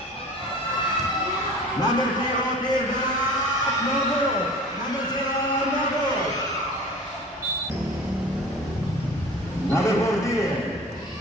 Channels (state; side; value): normal; both; correlation 0.41